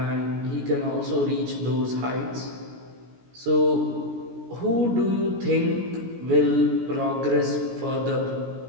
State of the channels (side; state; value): left; late; 17 ms